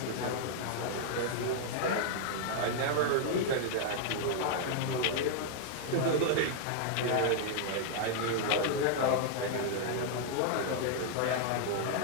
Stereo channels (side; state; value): both; different; correlation -0.01